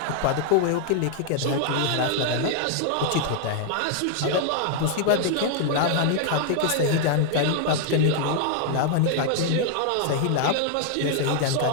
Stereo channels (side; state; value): both; different; correlation 0.00